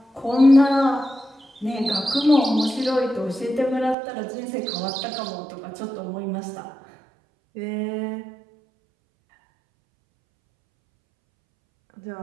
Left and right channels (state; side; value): drops out; left; at 4.0 s